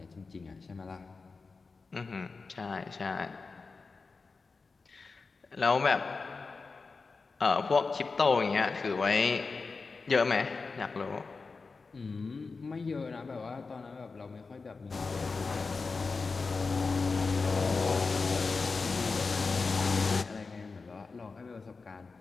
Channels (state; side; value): quieter; right; 4.3 dB